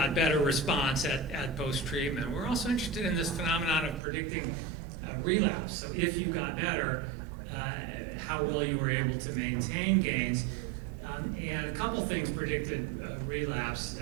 better response at post-treatment. We're also interested in this phenomenon of predicting relapse. So if you got better, how well you were able to maintain gains. And a couple things predicted relapse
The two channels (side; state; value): left; drops out; at 4.0 s